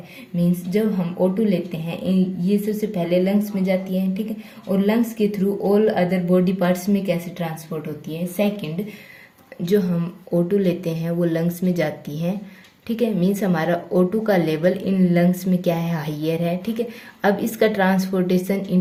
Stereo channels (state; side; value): identical; both; correlation 1.00